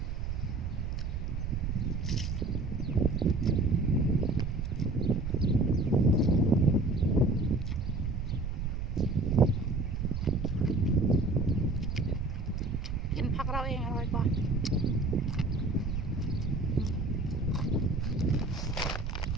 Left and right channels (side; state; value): right; noise; rumble, 3 dB below the sound